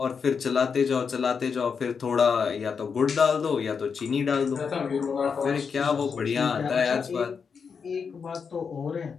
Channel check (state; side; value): quieter; right; 6.0 dB